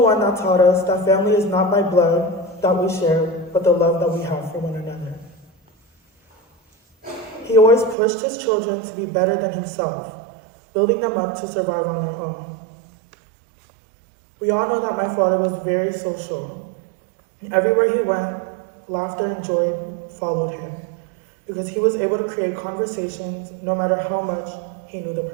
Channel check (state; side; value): drops out; left; at 8.0 s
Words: that taught us that family is not by blood that we share, but the love that we have for one another. He always pushed his children to be better than himself, building them up to survive on their own. We all know that my father was very social. Everywhere he went, laughter and joy followed him, because he was able to create conversations no matter how much he knew the